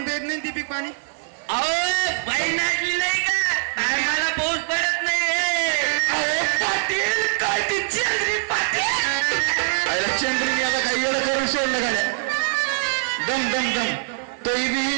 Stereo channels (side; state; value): left; silent; 61 dB below the other